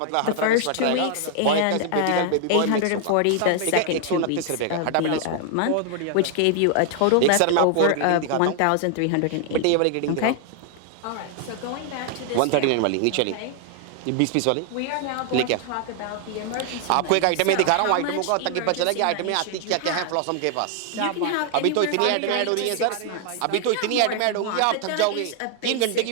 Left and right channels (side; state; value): both; different; correlation 0.00